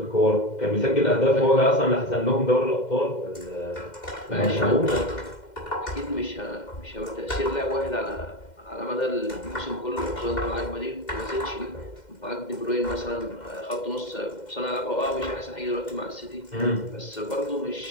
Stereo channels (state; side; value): late; right; 2.1 ms